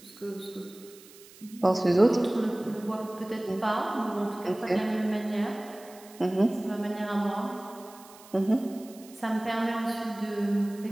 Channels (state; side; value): noise; right; hiss, 22 dB below the sound